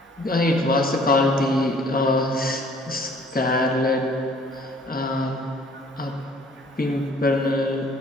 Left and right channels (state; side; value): normal; both; correlation 0.57